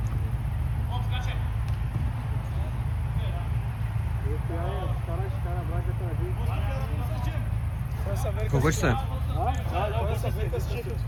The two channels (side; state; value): both; identical; correlation 1.00